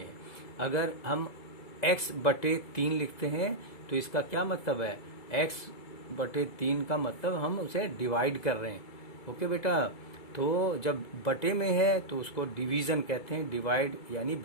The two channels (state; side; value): late; right; 2.0 ms